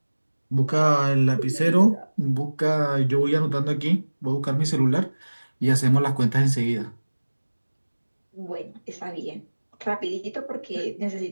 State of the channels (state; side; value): inverted; both; correlation -1.00